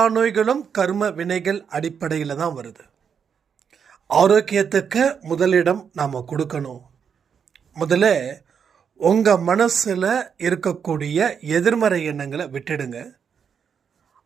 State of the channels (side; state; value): left; quieter; 7.1 dB